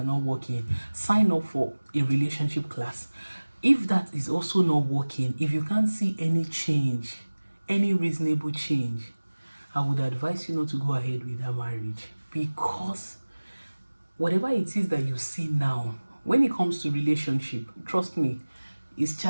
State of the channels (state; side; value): inverted; both; correlation -1.00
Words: not working, sign up for a relationship class. If that is also not working, if you can't see any change, any reasonable change, I would advise you not to go ahead with that marriage, because whatever it is that you see now, when it comes to relationship, trust me, it's